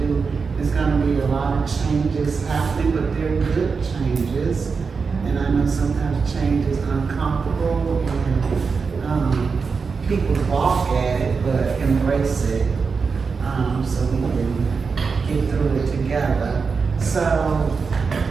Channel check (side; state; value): left; quieter; 5.1 dB